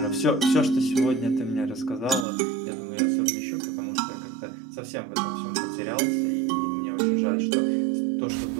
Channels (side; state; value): left; drops out; at 2.2 s